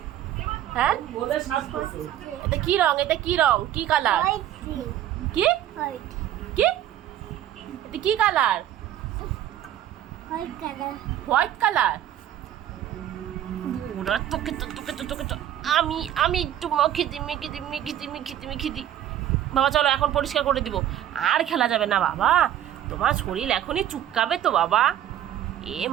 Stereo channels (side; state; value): left; quieter; 11.7 dB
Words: হ্যাঁ, এটা কি রং? এটা কি রং? কি কালার? হোয়াইট। কি হোয়াইট। কি এটা কি colour? White colour. White colour. ওরা তোকে তো তোকে তো তোকে তো আমি আমি একটু মেখে দিই। বাবা চলো এখন পরিষ্কার করে দিব, আর খেলা যাবে না বাবা, তোমার শরীর এখনই চুপকাবে তো বাবা। এ